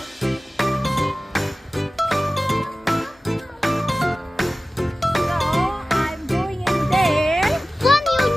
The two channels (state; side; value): normal; both; correlation 0.96